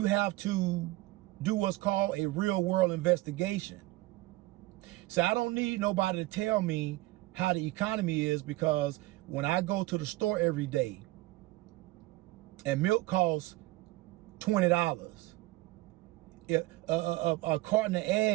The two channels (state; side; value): quieter; left; 19.6 dB